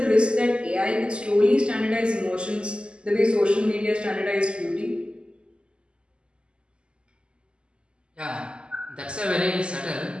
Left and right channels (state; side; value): late; left; 0.051 ms